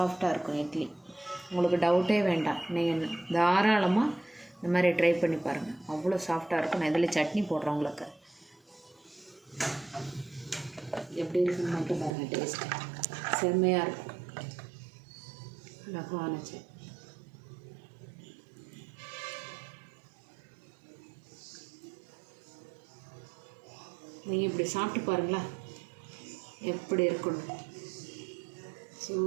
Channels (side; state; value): left; drops out; at 12.2 s